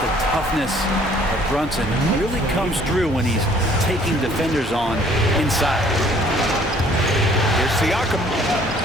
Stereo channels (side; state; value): both; normal; correlation 0.58